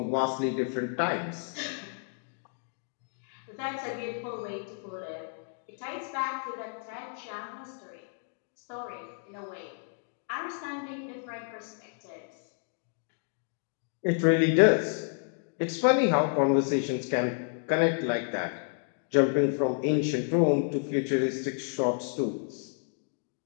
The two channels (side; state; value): right; silent; 57 dB below the other